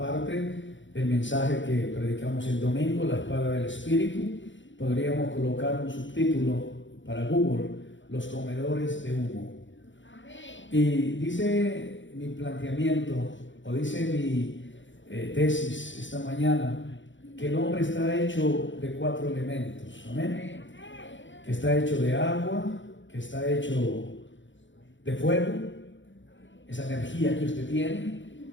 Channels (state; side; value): late; right; 0.55 ms